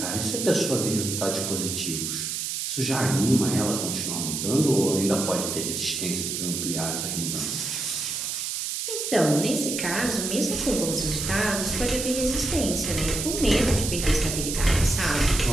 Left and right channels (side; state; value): right; noise; hiss, 3 dB below the sound